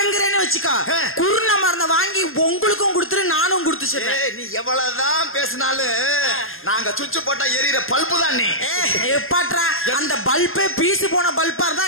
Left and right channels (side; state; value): right; late; 0.60 ms